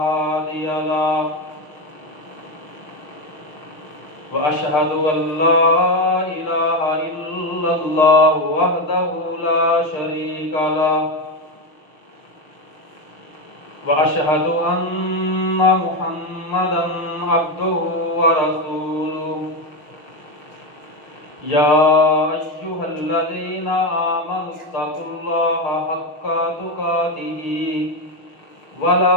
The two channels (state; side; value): late; right; 6.6 ms